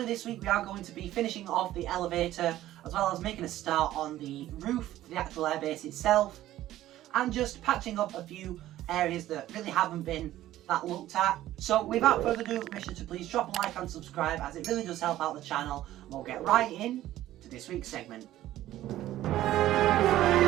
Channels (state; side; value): quieter; left; 14.1 dB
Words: this week we are going to be finishing off the elevator as well as making a start on the roof, the actual airbase itself, and just patching up a few areas that really haven't been that looked at. So without further ado, make sure to please drop a like and subscribe as it really does help out the channel, and we'll get right in to this week's segment.